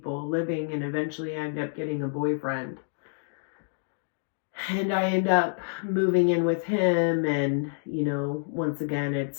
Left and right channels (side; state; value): right; silent; digital silence